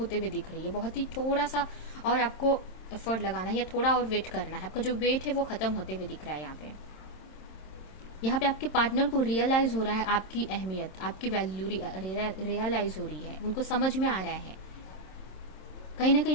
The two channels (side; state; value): right; late; 26 ms